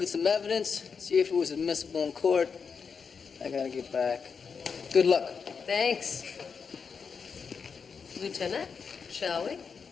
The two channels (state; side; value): quieter; right; 5.9 dB